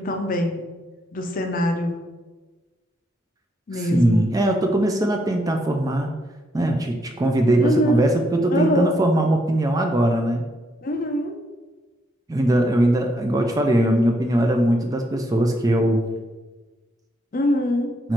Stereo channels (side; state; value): both; normal; correlation 0.76